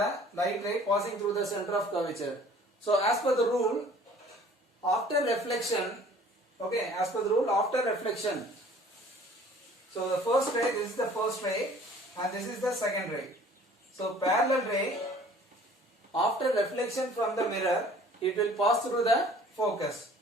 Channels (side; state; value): both; normal; correlation 0.51